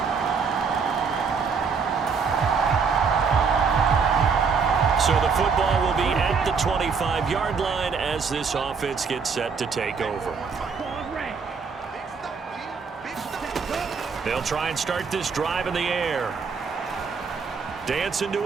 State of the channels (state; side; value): quieter; left; 5.5 dB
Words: So the football will be at the 25-yard line as this offense gets set to take over. They'll try and start this drive in the air. Dancing to